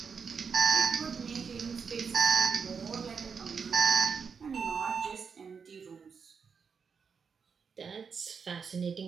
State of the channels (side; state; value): left; quieter; 5.9 dB